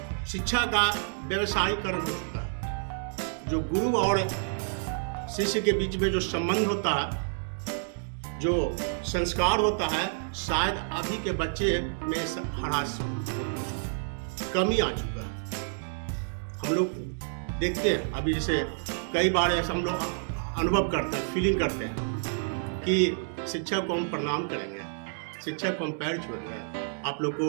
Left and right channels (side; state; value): left; silent; digital silence